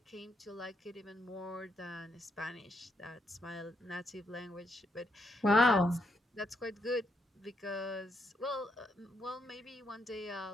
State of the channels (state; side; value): normal; both; correlation 0.77